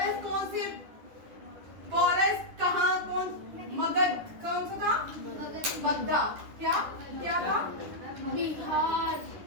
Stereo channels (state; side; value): late; left; 10 ms